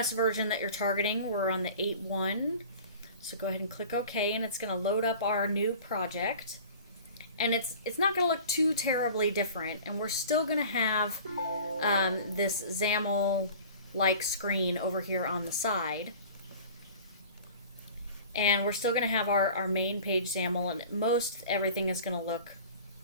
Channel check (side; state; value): both; inverted; correlation -0.42